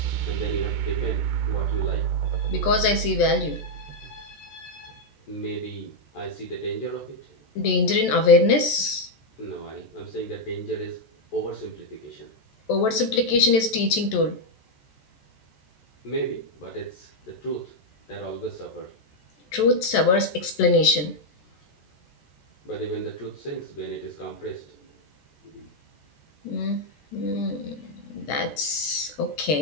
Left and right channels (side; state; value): right; late; 14 ms